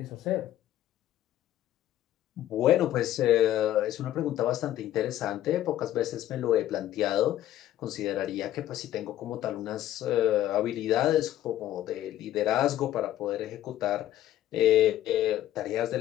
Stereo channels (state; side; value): quieter; right; 12.9 dB